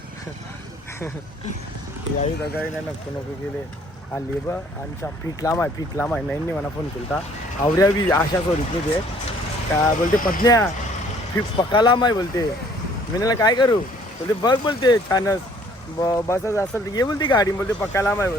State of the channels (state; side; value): normal; both; correlation 0.58